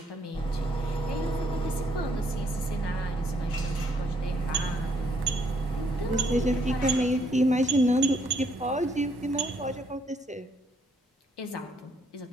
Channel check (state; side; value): normal; both; correlation 0.69